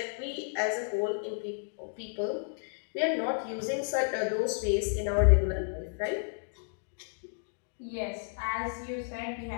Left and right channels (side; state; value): right; silent; digital silence